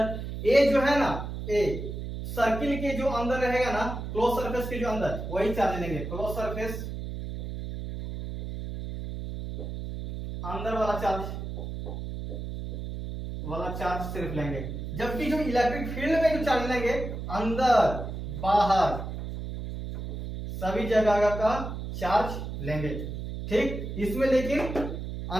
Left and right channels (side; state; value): right; noise; hum, 6 dB below the sound